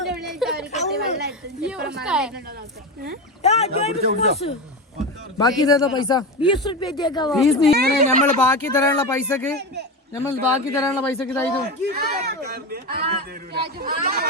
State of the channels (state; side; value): normal; both; correlation 0.19